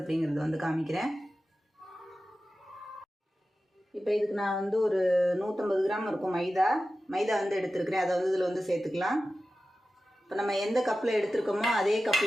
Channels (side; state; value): both; normal; correlation 0.94